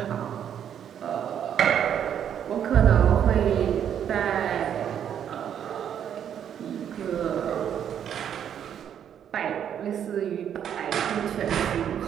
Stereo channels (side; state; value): left; quieter; 9.2 dB